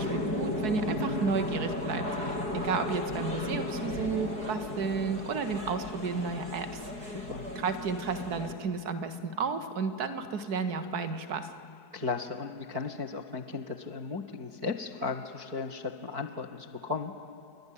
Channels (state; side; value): late; left; 4.7 ms